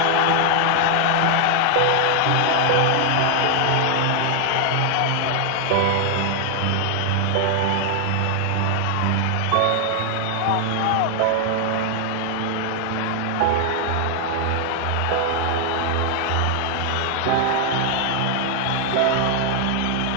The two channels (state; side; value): different; both; correlation 0.00